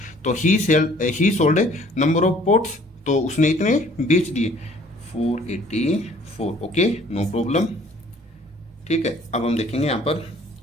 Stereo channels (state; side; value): normal; both; correlation 0.56